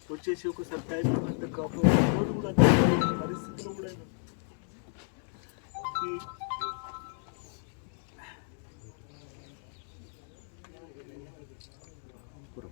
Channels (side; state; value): right; silent; 55 dB below the other